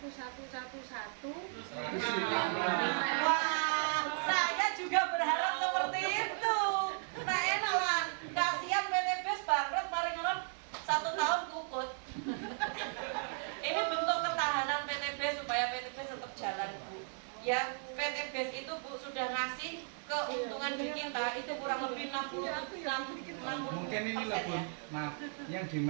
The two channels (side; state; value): left; silent; 54 dB below the other